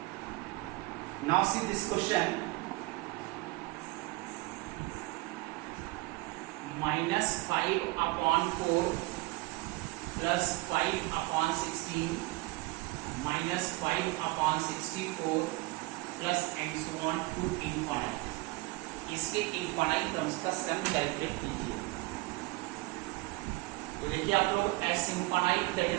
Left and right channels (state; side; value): quieter; left; 21.8 dB